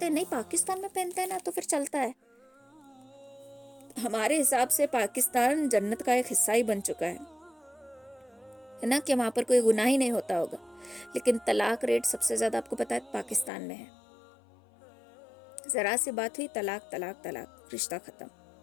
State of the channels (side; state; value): right; drops out; at 13.5 s